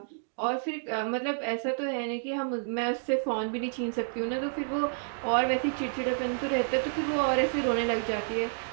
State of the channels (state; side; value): silent; left; digital silence